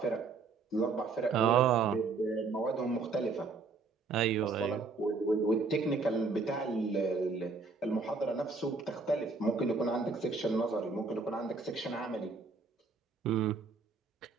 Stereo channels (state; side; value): quieter; left; 4.3 dB